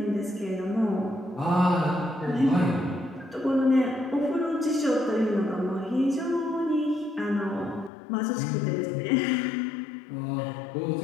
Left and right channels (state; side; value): drops out; right; at 7.9 s